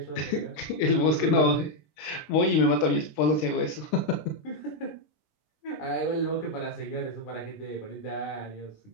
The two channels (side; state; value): right; late; 19 ms